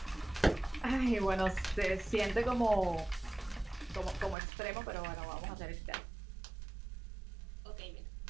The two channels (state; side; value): drops out; left; at 4.4 s